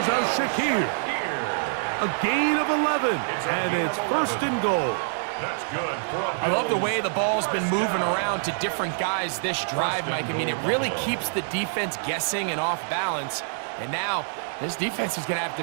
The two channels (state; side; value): silent; left; digital silence